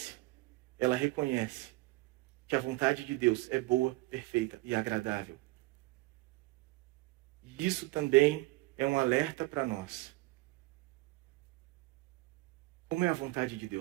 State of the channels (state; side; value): quieter; left; 21.6 dB